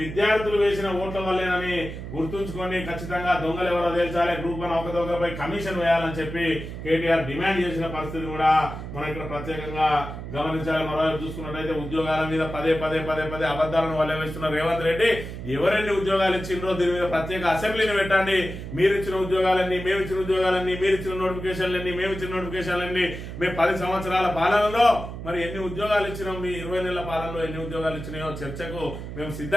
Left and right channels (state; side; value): noise; right; hum, 9 dB below the sound